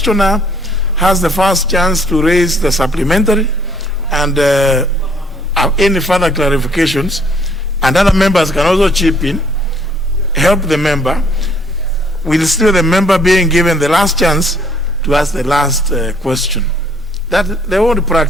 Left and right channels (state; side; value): normal; both; correlation 0.63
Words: has the first chance to raise the supplementary and any further clarifications, and other members can also chip in, help the member, with still the member being given the last chance to ask the last question. That they won't